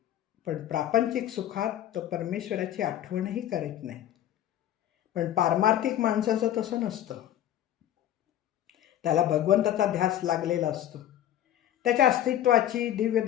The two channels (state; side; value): quieter; right; 11.7 dB